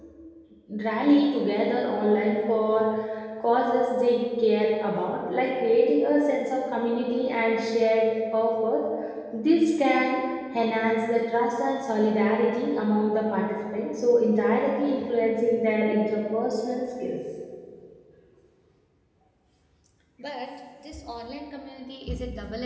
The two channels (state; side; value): identical; both; correlation 1.00